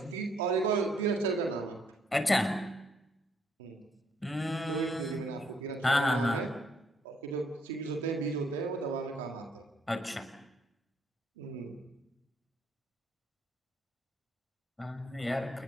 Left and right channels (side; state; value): both; normal; correlation 0.70